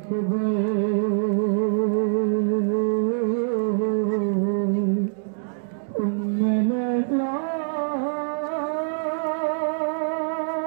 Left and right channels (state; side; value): silent; left; digital silence